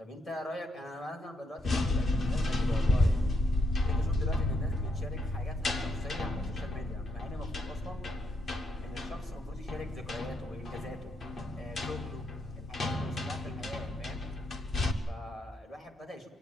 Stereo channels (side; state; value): both; normal; correlation 0.79